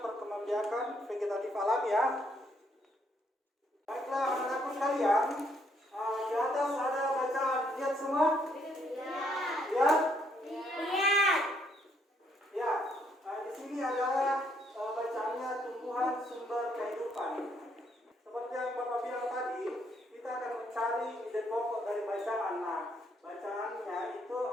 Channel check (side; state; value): both; normal; correlation 0.71